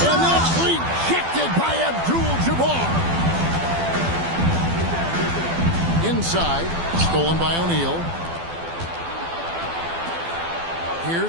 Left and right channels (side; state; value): left; late; 12 ms